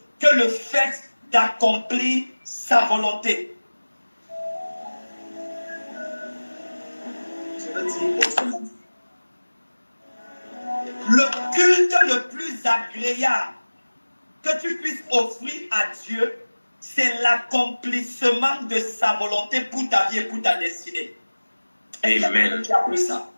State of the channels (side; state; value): both; inverted; correlation -1.00